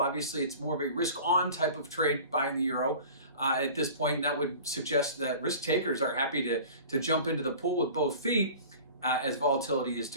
it's more of a risk-on type of trade buying the euro at this point, and that would suggest that risk takers are happy to jump into the pool with both feet as volatility is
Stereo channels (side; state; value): both; inverted; correlation -0.41